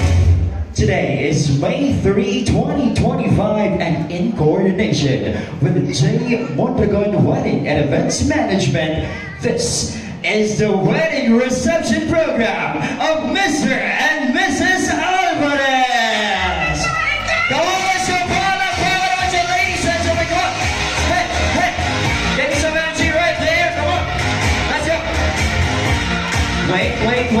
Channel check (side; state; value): both; identical; correlation 1.00